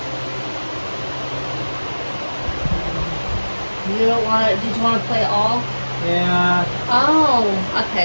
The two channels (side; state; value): both; inverted; correlation -1.00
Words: You don't want to. Did you want to play all? Yeah. Oh,